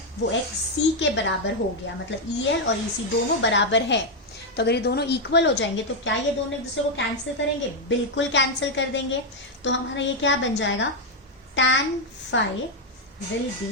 वो XC के बराबर हो गया. मतलब EL और EC दोनों बराबर है. तो अगर ये दोनों इक्वल हो जाएंगे तो क्या ये दोनों एक दूसरे को कैंसिल करेंगे? बिल्कुल कैंसिल कर देंगे. तो हमारा ये क्या बन जाएगा? tan phi will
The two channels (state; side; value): normal; both; correlation 0.02